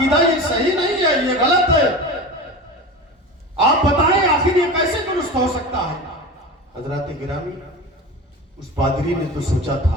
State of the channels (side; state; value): both; normal; correlation 0.30